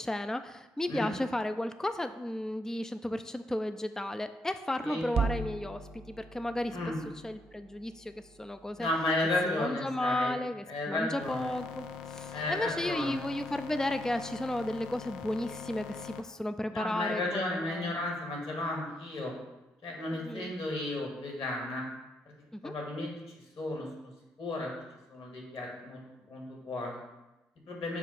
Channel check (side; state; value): both; normal; correlation 0.79